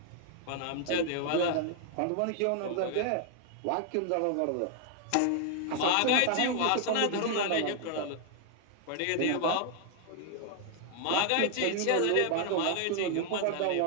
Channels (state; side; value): different; both; correlation 0.00